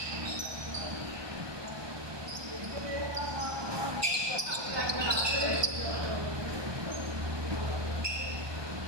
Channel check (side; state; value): left; late; 1.2 ms